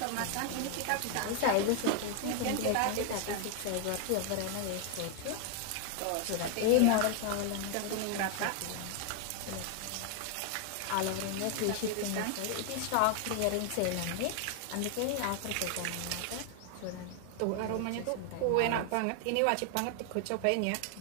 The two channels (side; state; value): both; different; correlation 0.00